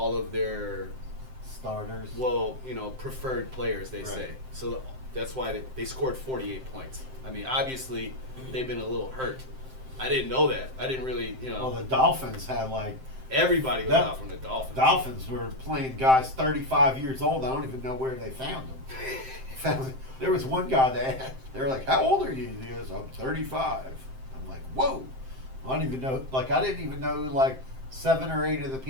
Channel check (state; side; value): late; left; 7.7 ms